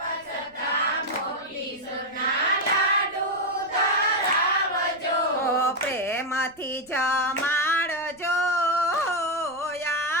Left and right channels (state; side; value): noise; right; rumble, 29 dB below the sound